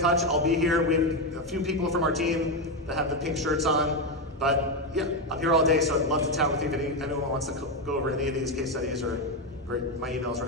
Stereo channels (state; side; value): normal; both; correlation 0.09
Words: I'll be here. We have a few people from our team that have the pink shirts on. But yeah, I'm here all day, so I'd love to chat with you if anyone wants to go over any of these case studies, or my email's